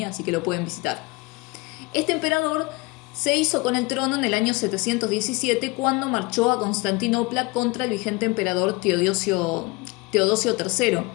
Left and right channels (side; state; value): right; quieter; 24.5 dB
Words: así que lo pueden visitar. Este emperador se hizo con el trono en el año 717 cuando marchó a Constantinopla contra el vigente emperador Teodosio III.